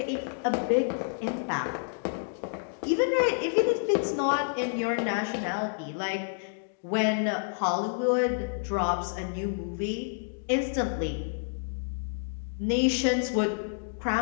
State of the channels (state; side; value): silent; right; digital silence